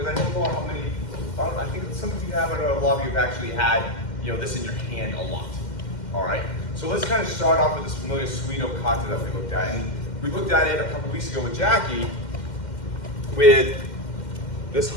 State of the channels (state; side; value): late; right; 2.1 ms